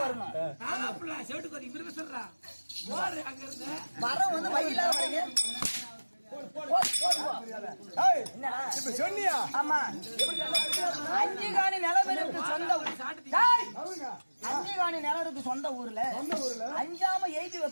மரம் வந்து வயிலாத வரைக்கும் சொன்னியா? ஆமா. அஞ்சுகாணி நிலவருக்கு சொந்த ஊர்ல அஞ்சாம எழுதி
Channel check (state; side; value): inverted; both; correlation -1.00